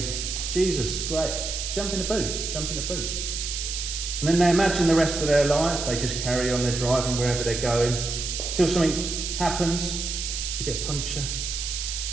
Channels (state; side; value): noise; right; hiss, 4 dB below the sound